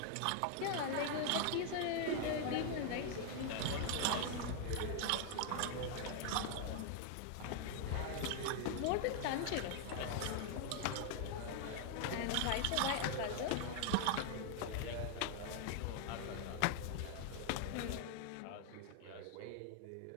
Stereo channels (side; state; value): both; different; correlation 0.00